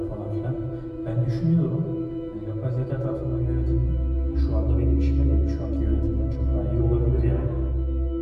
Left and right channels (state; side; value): identical; both; correlation 1.00